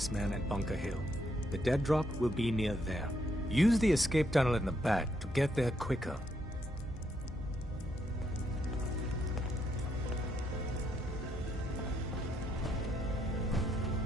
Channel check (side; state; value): both; normal; correlation 0.75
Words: at Bunker Hill. The dead drop will be near there. Use the escape tunnel in the back to get there quicker.